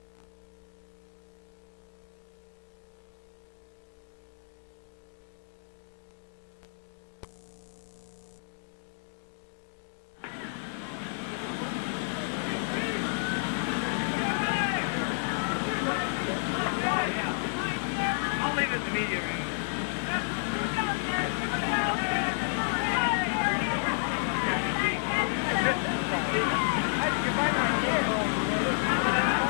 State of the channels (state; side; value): silent; right; digital silence